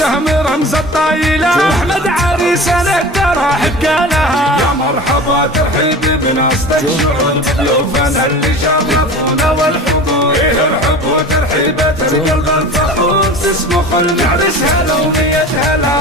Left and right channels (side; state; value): both; normal; correlation 0.36